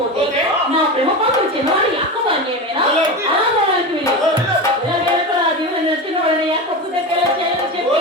నా ప్రేమ పాత్ర చిన్నవాడి అక్కవాడిని ఏమైనా అనాథవాడికి చిన్నవాడిని అక్కపుతే చెప్పి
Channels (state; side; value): normal; both; correlation 0.23